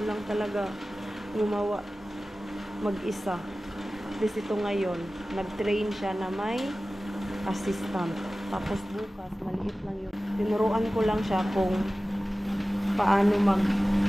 lang talaga gumawa mag-isa. At least ito ngayon, nag-train siya na may assistant. Tapos bukas, maliit lang yung... Tinuruan ko lang siya kung paano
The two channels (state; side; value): normal; both; correlation 0.96